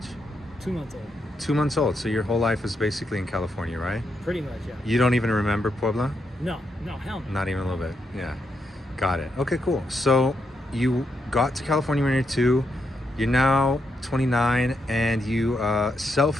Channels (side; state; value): both; normal; correlation 0.81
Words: 2 months old. 2 months old. So your whole life was basically in California, right? Pretty much, yeah. You don't even remember Puebla? No, hell no. Not even a little bit. Yeah. Got it. Okay, cool. So you got to California when you're 2. You're now 29 and you